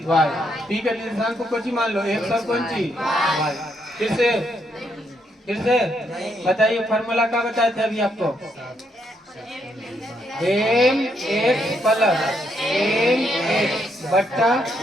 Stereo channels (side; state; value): both; normal; correlation 0.76